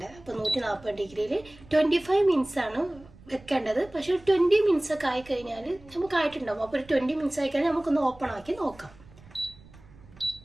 അപ്പോൾ 140 ഡിഗ്രിയിൽ 25 മിനിറ്റ്സ് ആണ് വെക്കേണ്ടത്. പക്ഷേ 20 മിനിറ്റ്സ് ഒക്കെ ആയിക്കഴിഞ്ഞാൽ നമുക്ക് ആയിട്ടുണ്ടാവും. അപ്പോൾ ഒരു 20 മിനിറ്റ്സ് ആയിക്കഴിഞ്ഞാൽ നമുക്കൊന്ന് ഓപ്പൺ ആക്കി നോക്കാം.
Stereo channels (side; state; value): right; noise; rumble, 23 dB below the sound